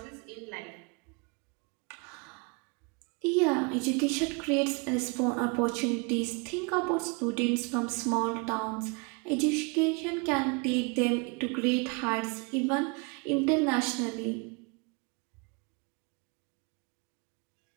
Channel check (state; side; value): quieter; left; 31.9 dB